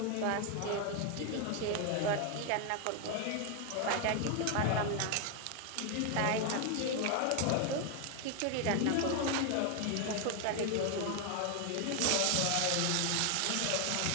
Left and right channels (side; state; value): both; different; correlation 0.01